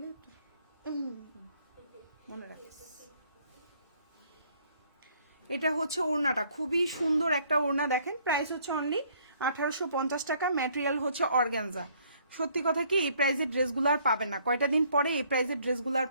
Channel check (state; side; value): inverted; both; correlation -0.63